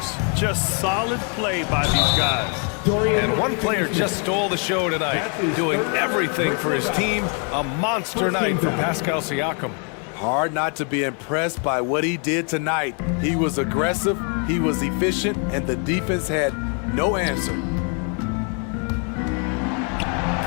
Just solid play by these guys. And one player just stole the show tonight, doing everything for his team. A monster night for Pascal Siakam. Hard not to be impressed by what he did tonight. He was aggressive, he was efficient, and the defense had no answer.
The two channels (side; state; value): right; quieter; 39.3 dB